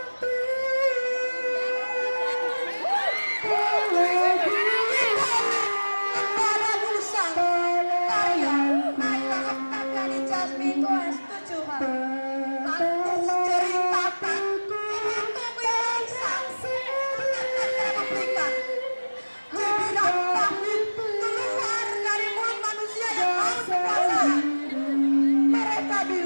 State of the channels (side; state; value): both; inverted; correlation -1.00